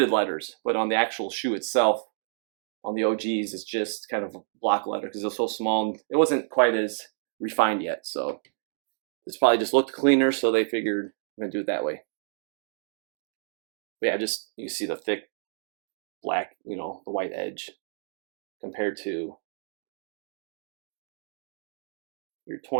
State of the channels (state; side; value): silent; left; digital silence